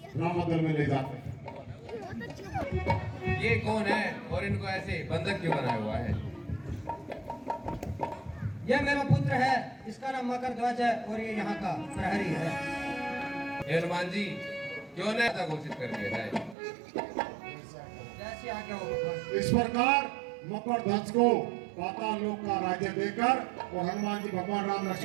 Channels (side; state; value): left; drops out; at 16.6 s